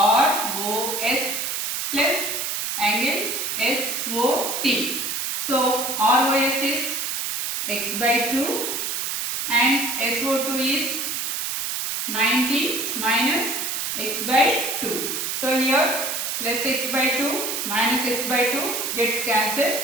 plus angle SOT. So ROS is x by 2 and SO2 is 90 minus x by 2. So here plus x by 2 minus x by 2 get cancelled.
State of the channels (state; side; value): noise; right; hiss, 2 dB below the sound